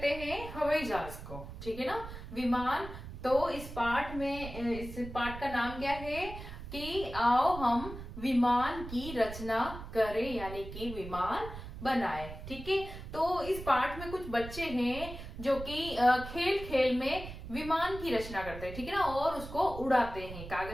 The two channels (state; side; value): noise; right; rumble, 11 dB below the sound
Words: हैं? हवाई जहाज को। ठीक है ना। विमान। तो इस पाठ का नाम क्या है कि आओ हम विमान की रचना करें, यानी कि विमान बनाए। ठीक है। तो इस पाठ में कुछ बच्चे हैं जो कि खेल खेल में विमान की रचना करते हैं। ठीक है ना। और उसको उड़ाते हैं,